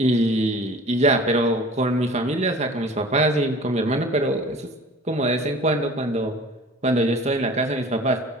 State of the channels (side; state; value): both; normal; correlation 0.44